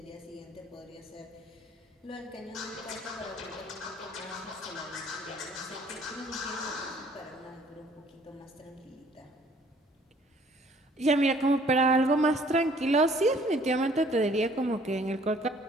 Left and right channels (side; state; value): both; normal; correlation 0.58